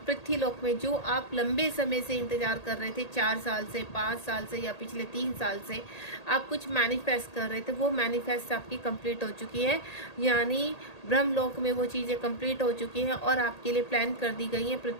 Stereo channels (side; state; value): right; late; 1.8 ms